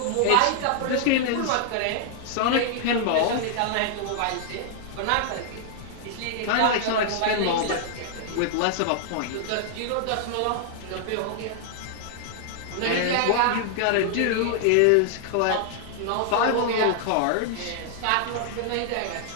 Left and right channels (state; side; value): different; both; correlation 0.00